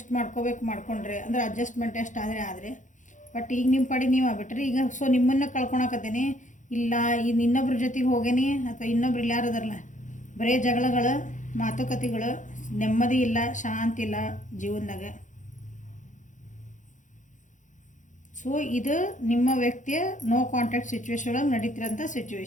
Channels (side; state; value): right; late; 0.36 ms